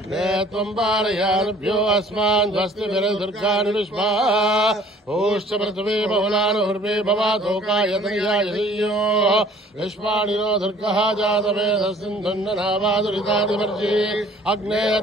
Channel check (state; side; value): normal; both; correlation 0.53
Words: त्वं पारयानुभ्यो अस्मान् स्वस्तिभिर्दुर्गाणि विश्वा भूश्च पृथिवी बहुलानुर्वे भवातोकायतयाययो विश्वाणिनो दुर्गः जातवेदसिन्धुन्ननावादुरितादिवर्जी अग्ने